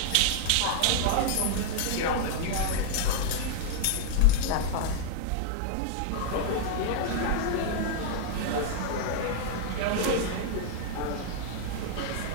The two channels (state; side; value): different; both; correlation -0.01